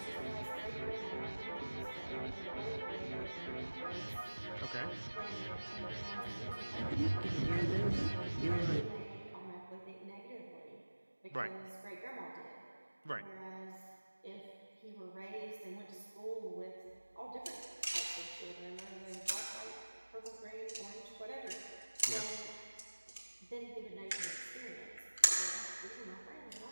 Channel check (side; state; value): both; inverted; correlation -1.00